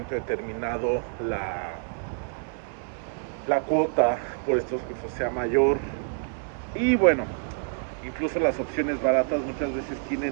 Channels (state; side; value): silent; left; 60 dB below the other